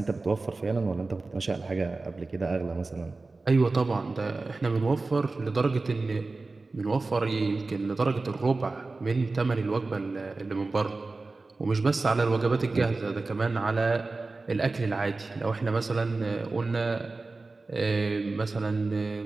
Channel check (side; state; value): left; quieter; 3.6 dB